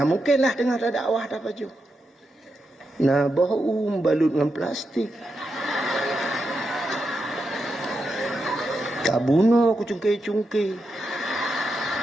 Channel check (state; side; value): normal; both; correlation 0.86